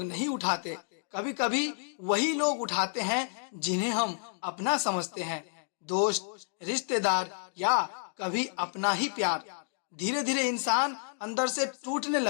नहीं उठाते, कभी कभी वही लोग उठाते हैं जिन्हें हम अपना समझते हैं। दोस्त, रिश्तेदार या कभी अपना ही प्यार। धीरे धीरे इंसान अंदर से टूटने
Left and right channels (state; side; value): silent; right; digital silence